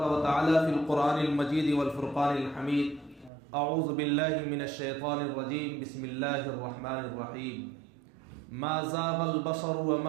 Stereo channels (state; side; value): drops out; left; at 3.3 s